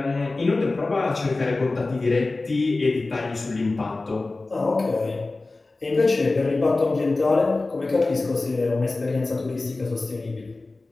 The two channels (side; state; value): right; quieter; 3.3 dB